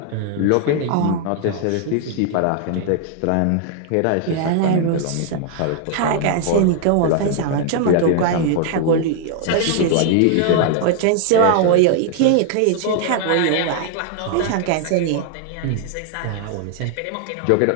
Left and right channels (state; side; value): different; both; correlation 0.00